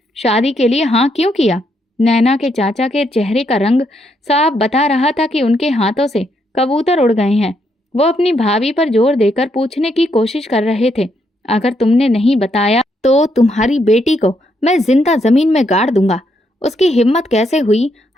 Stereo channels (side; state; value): both; normal; correlation 0.76